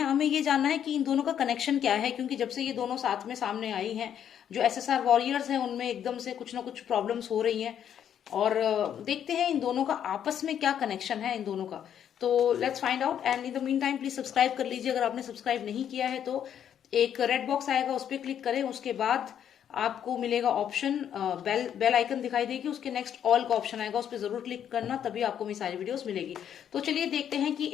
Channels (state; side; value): quieter; right; 9.3 dB